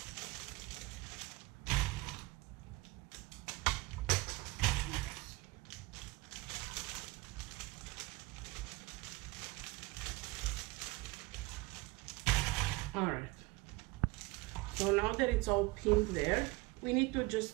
All right, so now that it's all pinned there, we need to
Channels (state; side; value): quieter; left; 22.0 dB